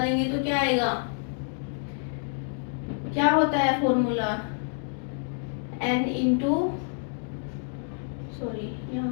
तो क्या आएगा, क्या होता है फॉर्मूला, N इंटू, सॉरी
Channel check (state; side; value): silent; right; 59 dB below the other